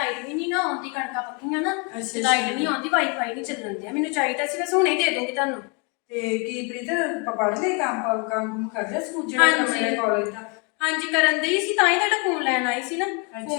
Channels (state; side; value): quieter; right; 33.3 dB